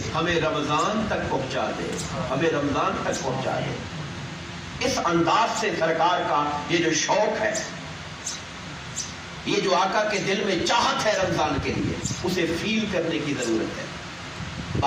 ہمیں رمضان تک پہنچا دے، ہمیں رمضان تک پہنچا دے۔ اس انداز سے سرکار کا یہ جو شوق ہے، یہ جو آقا کے دل میں چاہت ہے رمضان کے لیے، اسے فیل کرنے کی ضرورت ہے۔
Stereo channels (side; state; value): both; identical; correlation 1.00